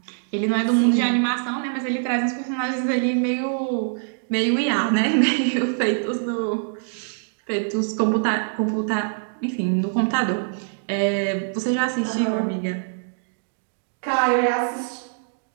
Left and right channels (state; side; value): silent; left; digital silence